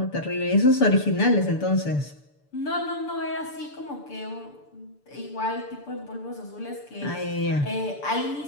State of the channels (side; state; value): right; late; 6.9 ms